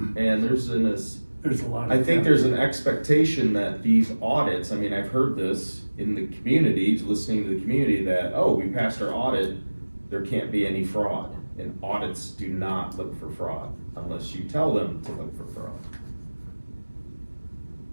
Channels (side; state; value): both; inverted; correlation -1.00